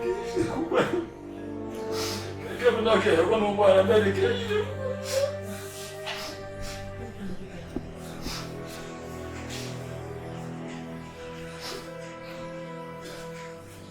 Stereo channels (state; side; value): identical; both; correlation 1.00